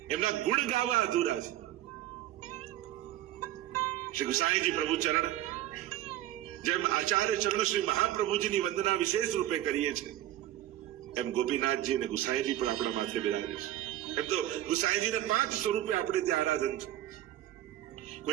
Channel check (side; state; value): left; quieter; 13.6 dB